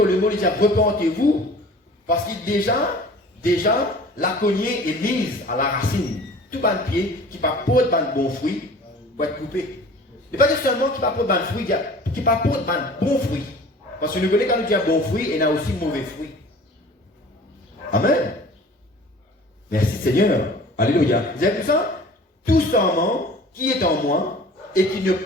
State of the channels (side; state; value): both; normal; correlation 0.45